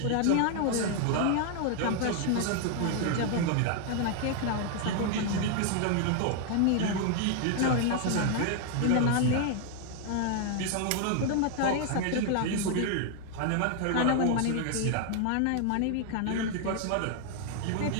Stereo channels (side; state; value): both; different; correlation 0.00